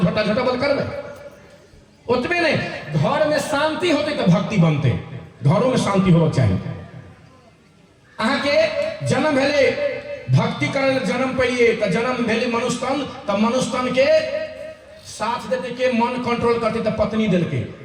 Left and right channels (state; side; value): identical; both; correlation 1.00